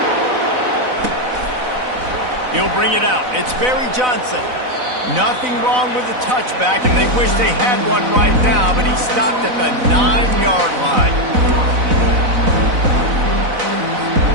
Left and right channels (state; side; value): late; left; 4.0 ms